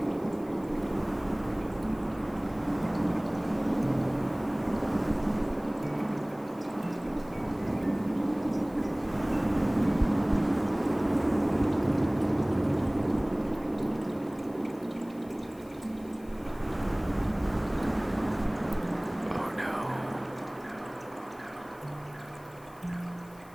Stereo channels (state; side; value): noise; left; hiss, 26 dB below the sound